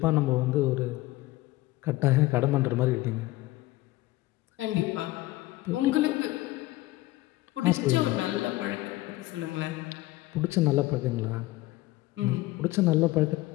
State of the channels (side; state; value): right; quieter; 18.5 dB